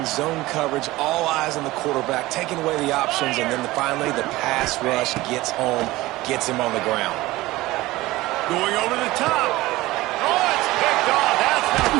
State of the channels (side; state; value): left; quieter; 18.7 dB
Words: zone coverage, all eyes on the quarterback, taking away the options, and then finally the pass rush gets home, gets him on the ground. Going over the top. Oh, it's picked off. That's not